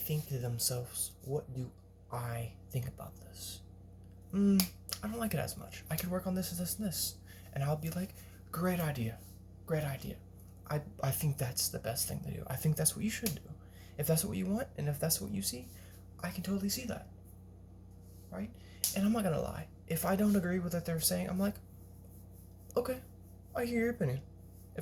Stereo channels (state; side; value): identical; both; correlation 1.00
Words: to themselves, what do I think about this? I don't like it as much. I could work on this, and this. And I'll be like, great idea. I think that's the best thing to do. I think that's what you should do. If that's what you want, and if that's what you see, I can totally see that. Right? And I'm not gonna lie. If I don't agree with what they're saying, I'm like, okay, I hear your opinion.